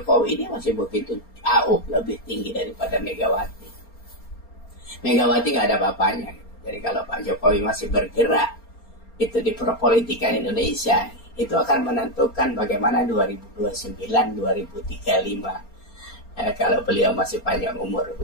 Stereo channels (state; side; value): late; right; 4.3 ms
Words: ini masih begitu jauh lebih tinggi daripada Megawati. Megawati nggak ada apa-apanya. Jadi kalau Pak Jokowi masih bergerak, itu di perpolitikan Indonesia, itu akan menentukan bagaimana 2029-2035 kalau beliau masih panjang umur